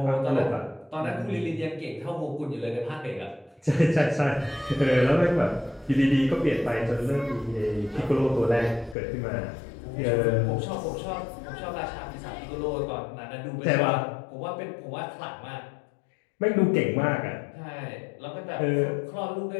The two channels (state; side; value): drops out; right; at 9.0 s